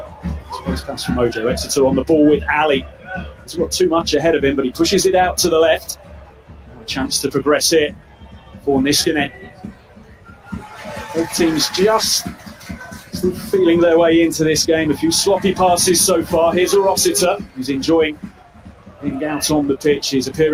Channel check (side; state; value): both; identical; correlation 1.00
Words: Space pass from Mojo. Exeter on the ball with Ali. He's got too much ahead of him, but he pushes it out to the left. A chance to progress here for Niskanen. Both teams just still feeling their way into this game. A few sloppy passes so far. Here's a Rossiter who's enjoying being out on the pitch. His